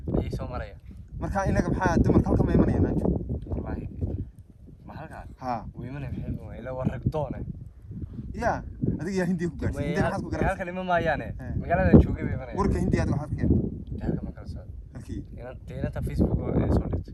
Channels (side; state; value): both; identical; correlation 1.00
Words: ay soo maraya marka inaga maxaa dumarka halka ma imanayaan anjo wallahi ma halka ha weymana maxay ila waragdoona ya adiga yaa Hindiya ku gaartay Hindiya maxaad ku gaartay halka lima maayaane magaalada joogay bay imanayaan warka Hindiya waxaad ka halka ma kala soo halkii inanta Facebook oo soo